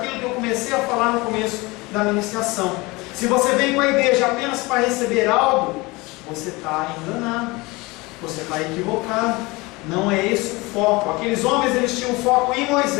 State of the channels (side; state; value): right; quieter; 23.4 dB